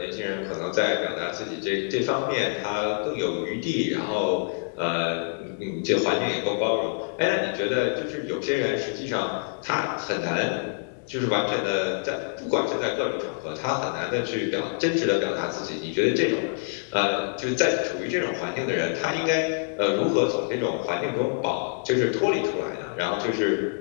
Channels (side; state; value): right; silent; 61 dB below the other